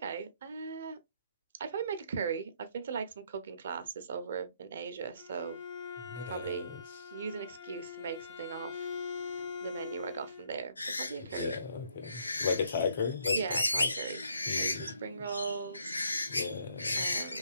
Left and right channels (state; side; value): inverted; both; correlation -0.69